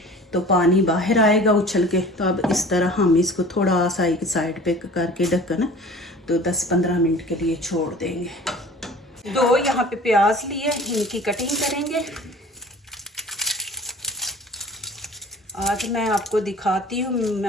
तो पानी बाहर आएगा उछल के। तो अब इस तरह हम इसको थोड़ा सा एक साइड पे करके ढक्कन तो 10-15 मिनट के लिए छोड़ देंगे। 2 यहाँ पे प्याज लिए, इनकी कटिंग करेंगे। आज मैं आपको दिखाती हूँ,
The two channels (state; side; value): normal; both; correlation 0.44